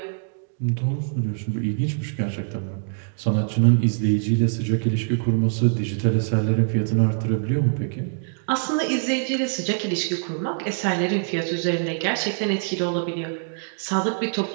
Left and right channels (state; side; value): silent; left; digital silence